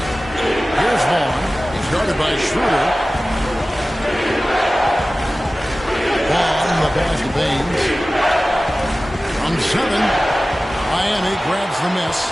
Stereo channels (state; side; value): normal; both; correlation 0.96